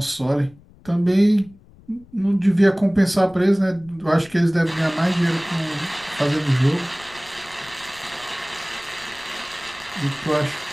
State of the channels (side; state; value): left; noise; rumble, 25 dB below the sound